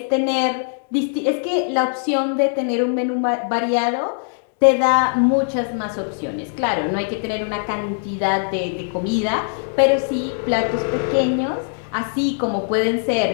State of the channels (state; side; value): silent; right; digital silence